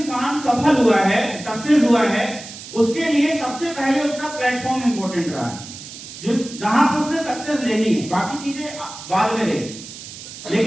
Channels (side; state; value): right; noise; hiss, 13 dB below the sound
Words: सफल हुआ है, सक्सेस हुआ है, उसके लिए सबसे पहले उसका प्लेटफॉर्म इंपॉर्टेंट रहा है। जो जहां पर उसने सक्सेस लेनी है, बाकी चीजें बाद में रहेगी।